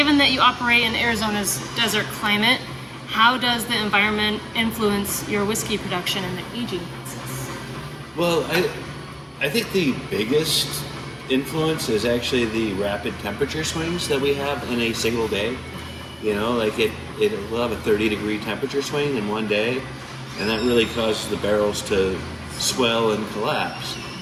that you operate in Arizona's desert climate, how does the environment influence your whiskey production and the aging process? Well, I think the biggest influence is actually the rapid temperature swings that we have in a single day. We'll have a 30-degree temperature swing in one day, and that really causes the barrels to swell and collapse.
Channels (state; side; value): identical; both; correlation 1.00